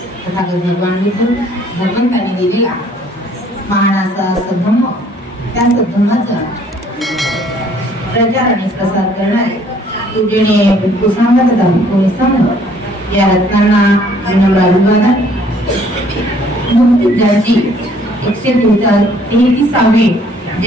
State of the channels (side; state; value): both; normal; correlation 0.60